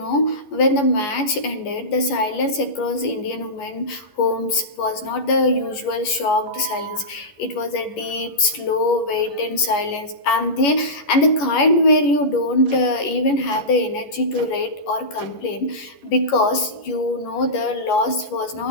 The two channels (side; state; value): right; late; 11 ms